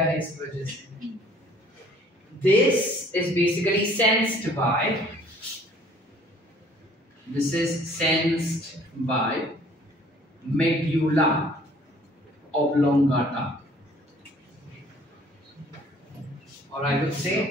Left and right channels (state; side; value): normal; both; correlation 0.56